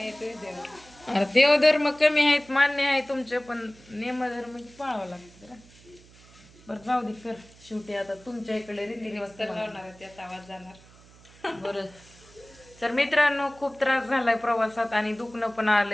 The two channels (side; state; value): right; noise; hum, 25 dB below the sound